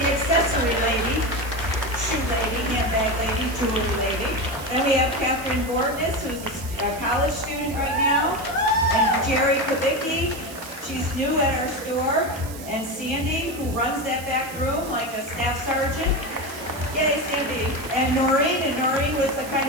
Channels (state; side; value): noise; right; hiss, 15 dB below the sound